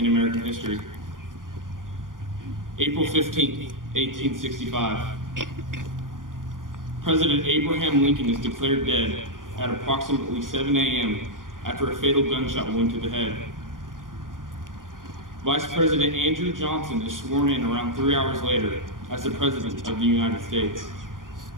American history. April 15th, 1865. President Abraham Lincoln is declared dead at approximately 7 a.m. after a fatal gunshot wound to the head. Vice President Andrew Johnson is sworn in around 3 hours later as the President of the United States.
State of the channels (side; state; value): left; late; 0.89 ms